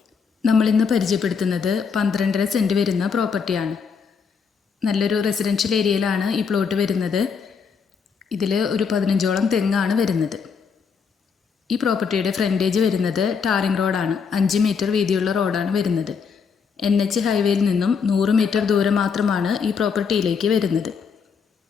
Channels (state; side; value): quieter; right; 6.0 dB